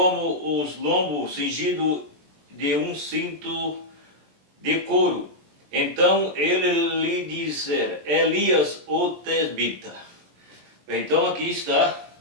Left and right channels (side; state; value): left; late; 20 ms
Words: os lombos cingido de um cinto de couro. Então ele lhe disse, Elias o tesbita. Então aqui está